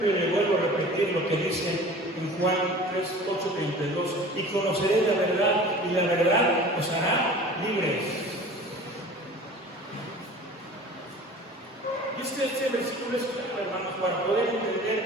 le vuelvo a repetir lo que dice en Juan 3:8-32: y conoceré la verdad, y la verdad os hará libres. Y este versículo es claro, hermanos, para poder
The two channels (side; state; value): both; normal; correlation 0.42